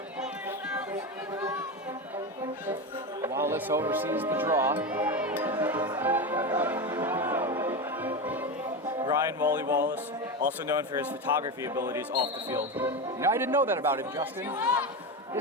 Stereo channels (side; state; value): both; normal; correlation 0.18